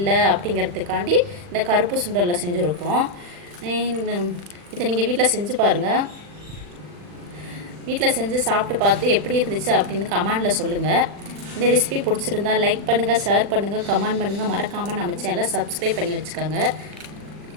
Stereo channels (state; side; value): late; left; 40 ms